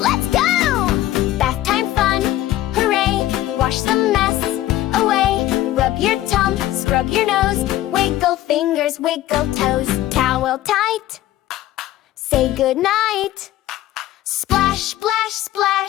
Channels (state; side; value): quieter; right; 14.4 dB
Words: go. Bath time fun, hooray. Wash the mess away. Rub your tum, scrub your nose. Wiggle fingers, wiggle toes. Towel tight, say goodnight. Splash, splash,